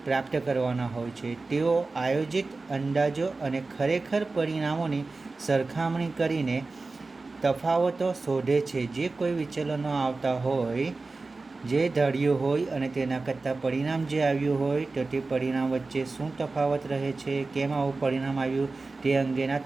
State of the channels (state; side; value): quieter; left; 3.6 dB